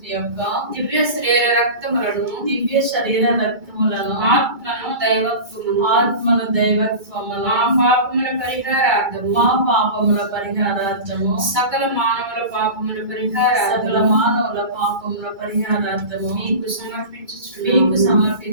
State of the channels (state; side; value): late; left; 2.3 ms